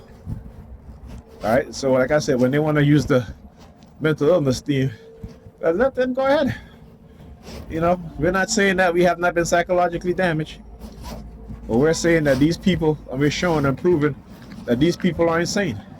right. So like I said, when they want to use the mental illness theme, let them go ahead. We're not saying that we have not been psychologically damaged, but we're saying that these people, and we're showing and proving that these people are insane.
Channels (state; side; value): identical; both; correlation 1.00